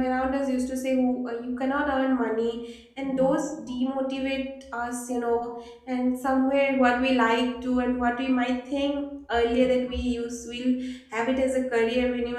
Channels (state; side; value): identical; both; correlation 1.00